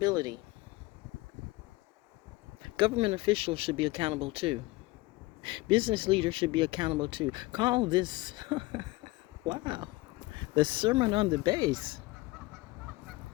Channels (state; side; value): quieter; right; 21.1 dB